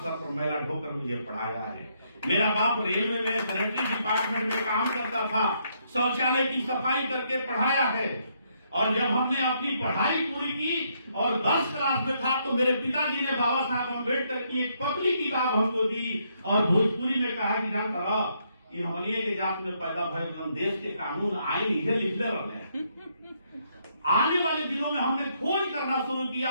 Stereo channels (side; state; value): both; inverted; correlation -0.74